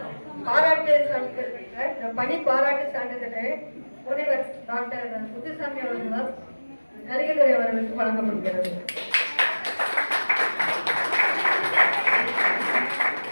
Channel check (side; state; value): both; inverted; correlation -1.00